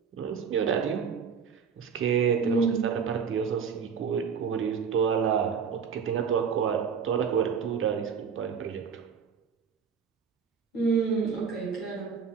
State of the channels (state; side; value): quieter; left; 6.5 dB